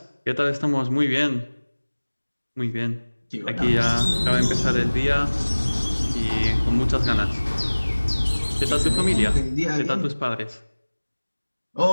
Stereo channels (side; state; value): both; inverted; correlation -1.00